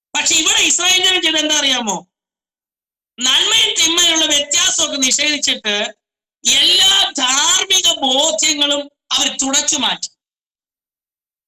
പക്ഷെ ഇവിടെ ഇസ്രായേൽ ജനം ചെയ്ത് എന്താ അറിയാമോ? നന്മയും തിന്മയുള്ള വ്യത്യാസമൊക്കെ നിഷേധിച്ചിട്ട് എല്ലാ ധാർമ്മിക ബോധ്യങ്ങളും അവർ തുടച്ചു മാറ്റി.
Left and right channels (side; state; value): both; identical; correlation 1.00